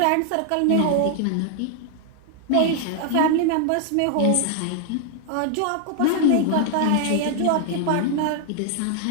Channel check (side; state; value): both; different; correlation 0.00